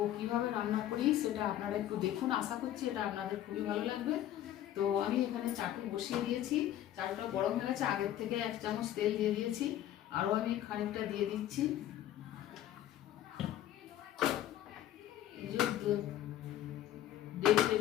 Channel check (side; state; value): right; quieter; 12.4 dB